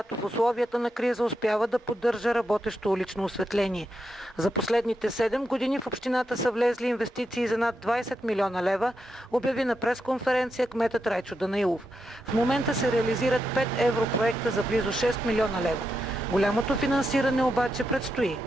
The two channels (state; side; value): normal; both; correlation 0.85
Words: в условията на криза успява да поддържа работещо улично осветление. За последните 7 години в общината са влезли инвестиции за над 20 милиона лева, обяви на пресконференция кметът Райчо Данаилов. В момента се реализират 5 европроекта за близо 6 милиона лева. Голямото финансиране обаче предстои.